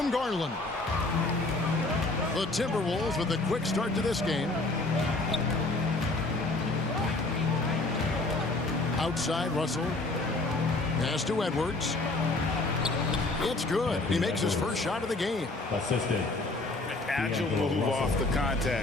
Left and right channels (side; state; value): right; quieter; 3.1 dB